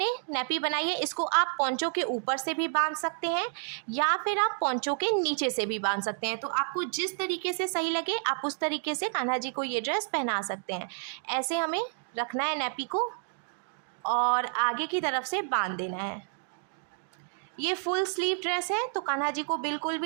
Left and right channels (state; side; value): silent; left; 58 dB below the other